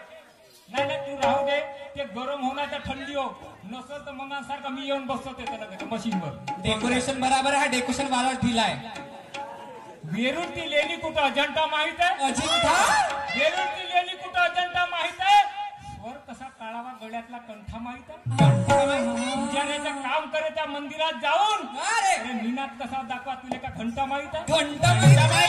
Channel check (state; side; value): identical; both; correlation 1.00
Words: नाही नाही, तू राहू दे. ते गरम होणार तर थंडी हो. नसल तर मग सारखं मी येऊन बसतो त्याला मशीनवर. डेकोरेशन बराबर आहे. डेकोरेशन वाला दिलाय. वेरूळची लेणी कुठं अजंठा माहित आहे? अजिंठा वेरूळची लेणी कुठं अजंठा माहित आहे? स्वर कसा काढावा गळ्यातला कंठा माहित आहे? पुजाऱ्याचं काम करे त्या मंदिरात जाऊन. अरे अरे निनाद कसा दाखवा तुला का घंटा माहित आहे? घंटा